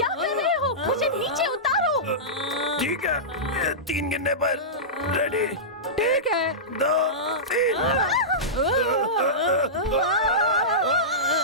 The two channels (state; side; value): normal; both; correlation -0.16